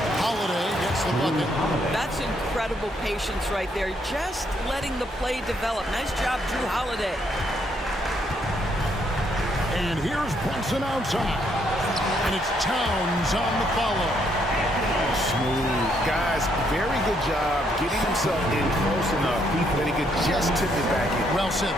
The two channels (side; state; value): both; normal; correlation 0.72